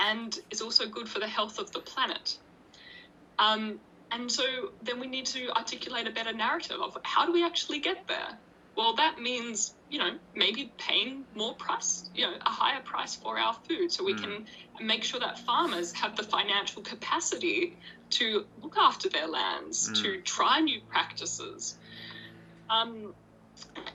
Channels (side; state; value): both; identical; correlation 1.00